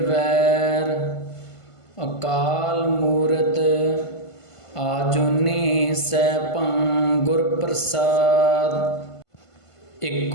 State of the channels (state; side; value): late; right; 1.5 ms